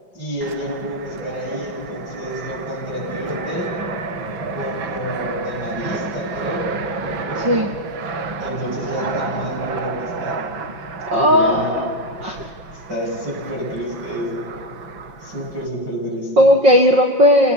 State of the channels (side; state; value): left; late; 5.9 ms